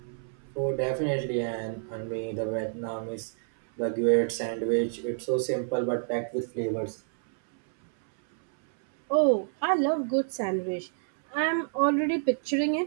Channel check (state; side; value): silent; left; 59 dB below the other